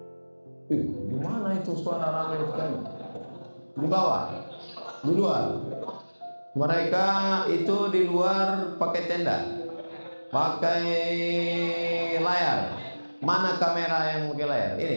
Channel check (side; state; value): both; inverted; correlation -1.00